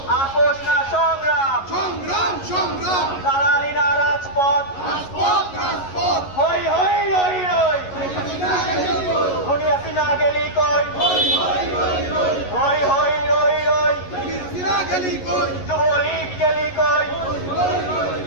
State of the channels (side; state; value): right; late; 11 ms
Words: আপোষ না সংগ্রাম, দালালি না রাজপথ, হই হই রই রই, খুনি হাসিনা গেলি কই, হই হই রই রই, যুবলীগ গেলি কই,